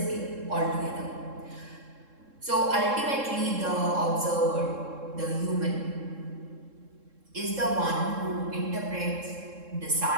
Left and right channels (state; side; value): late; left; 3.7 ms